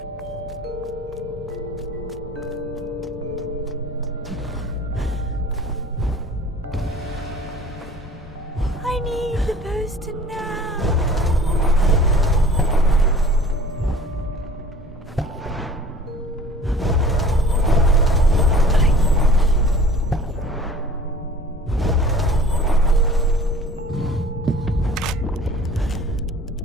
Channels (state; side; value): normal; both; correlation 0.47